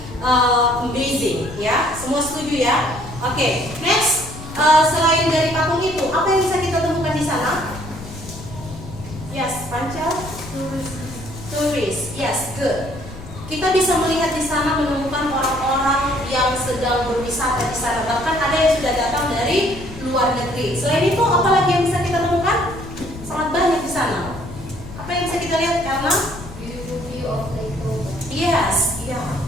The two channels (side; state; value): left; noise; rumble, 14 dB below the sound